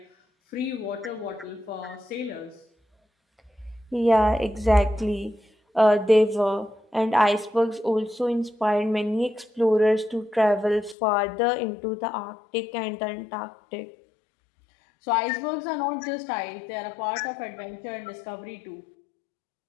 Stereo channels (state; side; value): drops out; right; at 11.0 s